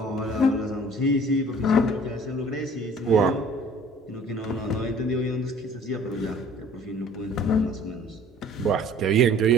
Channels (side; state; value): both; normal; correlation 0.50